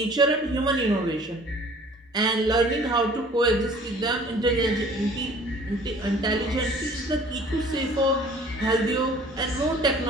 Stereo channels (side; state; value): both; normal; correlation 0.51